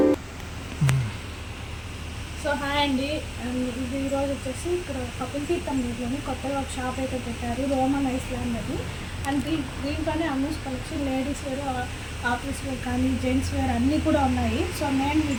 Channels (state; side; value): identical; both; correlation 1.00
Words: సో హాయ్ అండి, ఇది ఈరోజు వచ్చేసి ఇక్కడ కపిల్ తీర్థం రోడ్లోని కొత్తగా ఒక షాప్ అయితే పెట్టారు, రోమన్ ఐలాండ్ అని. అండ్ దీంట్లోనే Ammus collection ladies wear, office wear కానీ జెంట్స్ వేర్ అన్నీ కూడా ఉన్నాయి. సో నేను